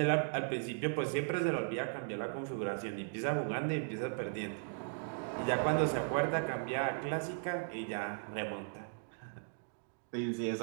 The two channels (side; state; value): left; silent; digital silence